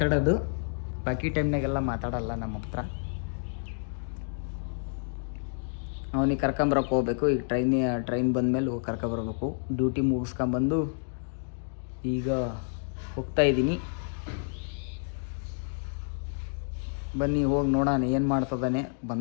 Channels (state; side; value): silent; right; digital silence